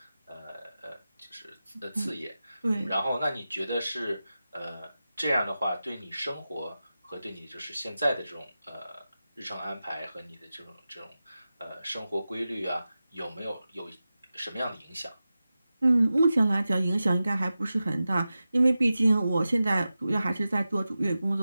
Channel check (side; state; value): both; inverted; correlation -0.94